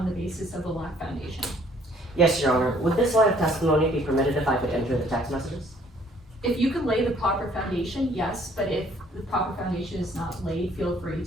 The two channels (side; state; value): both; normal; correlation 0.60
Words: the basis of a lack foundation. Yes, Your Honor. Would this line of testimony be permitted if I could enter the text messages? If you could lay the proper foundation, yes, but if the proper foundation is not laid, feel free